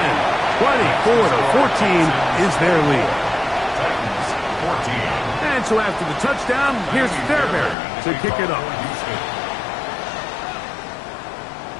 24-14 is their lead. And so after the touchdown, here's Fairbairn to kick it off.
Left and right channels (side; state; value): right; drops out; at 7.8 s